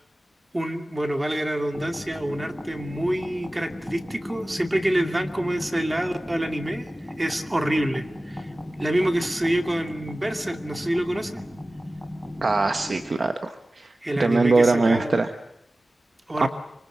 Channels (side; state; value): both; normal; correlation 0.97